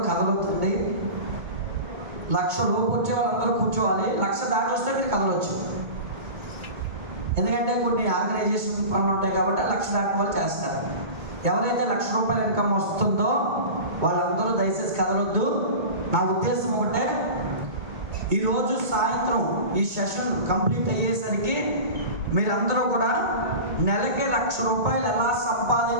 కదలొద్దండి. 1,00,000 లోపు వచ్చే వాళ్ళందరూ కూర్చోవాలి. 1,00,000 దాటి వస్తే మీరు కదలొచ్చు. ఎందుకంటే కొన్ని ఆర్గనైజేషన్ పనులు ఉంటాయి కాబట్టి 1,00,000 దాటి వాళ్ళు చేస్తారు. ఎవరైతే 1,00,000 రూపాయల ఇన్కమ్ వస్తుందో వాళ్ళందరూ దయచేసి కదలొద్దు. నా ఉద్దేశం ఒకటే, ఈరోజు సాయంత్రం ఈ సెషన్ కంప్లీట్ అయ్యేసరికి మీరందరూ కూడా నెలకి 1,00,000 రూపాయలు ఎలా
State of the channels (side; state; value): left; late; 2.2 ms